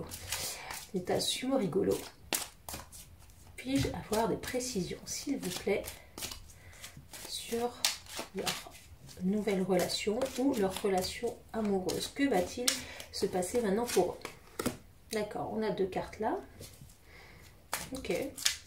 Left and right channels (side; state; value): both; identical; correlation 1.00